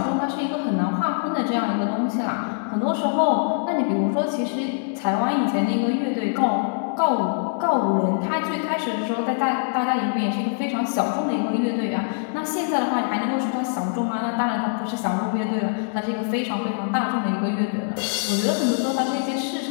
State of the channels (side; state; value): right; silent; digital silence